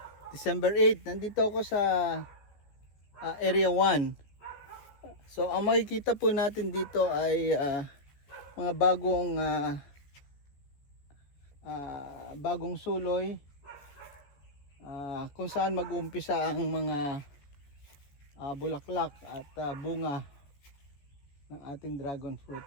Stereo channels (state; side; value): late; right; 14 ms